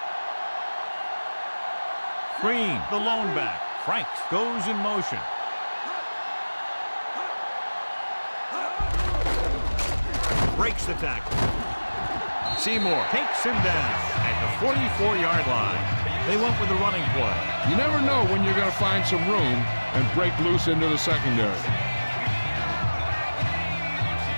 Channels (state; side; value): inverted; both; correlation -1.00